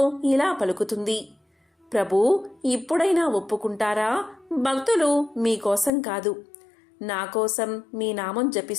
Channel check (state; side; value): drops out; right; at 5.9 s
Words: ఇలా పలుకుతుంది. ప్రభూ, ఇప్పుడైనా ఒప్పుకుంటారా? భక్తులు మీకోసం కాదు, నా కోసం మీ నామం